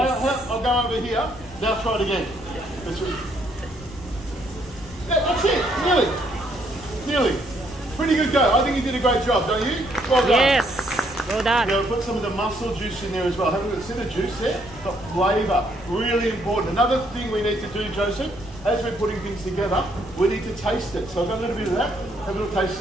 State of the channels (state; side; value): noise; left; rumble, 18 dB below the sound